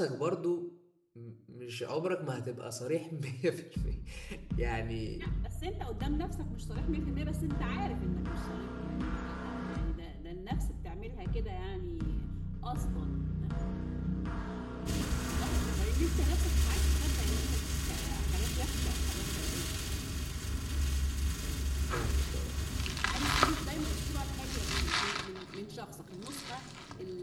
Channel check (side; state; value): both; identical; correlation 1.00